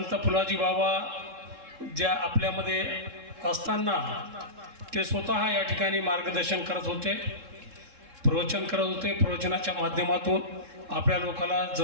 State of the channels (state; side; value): late; left; 3.7 ms